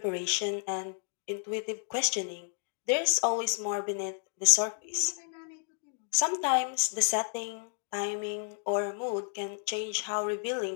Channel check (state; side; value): silent; right; digital silence